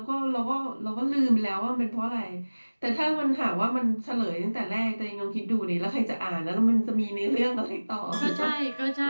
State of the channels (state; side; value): inverted; both; correlation -1.00